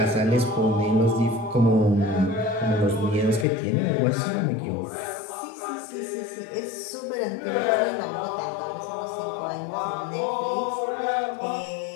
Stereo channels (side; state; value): right; drops out; at 3.5 s